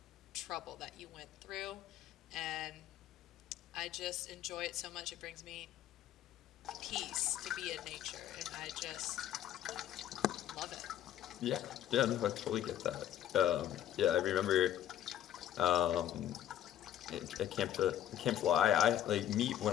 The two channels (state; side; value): quieter; right; 11.3 dB